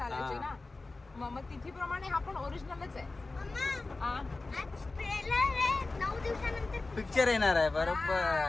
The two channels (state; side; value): quieter; right; 3.4 dB